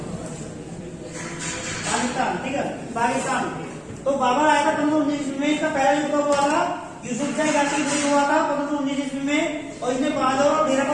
पाकिस्तान, ठीक है, पाकिस्तान। तो बाबर आया था 1519 में। इसका पहला युद्ध हुआ था यूसुफजाई जाति के विरुद्ध हुआ था 1519 ईस्वी में, और इसने बाजौर और भेरा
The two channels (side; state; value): both; identical; correlation 1.00